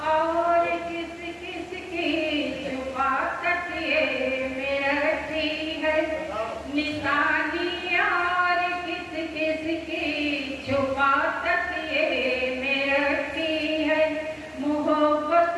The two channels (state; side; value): identical; both; correlation 1.00